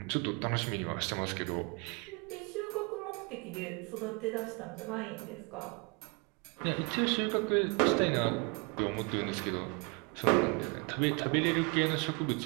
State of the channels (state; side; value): quieter; left; 30.6 dB